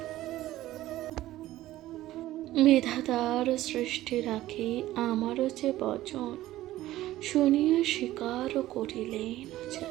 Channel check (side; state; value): left; quieter; 15.2 dB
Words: বিধাতার সৃষ্টি রাখি আমারও যে বচন। শুনিয়া স্বীকার করিলেন যে